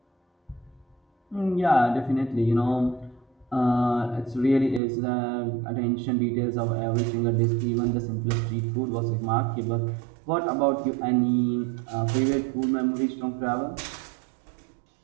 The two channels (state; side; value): drops out; left; at 4.8 s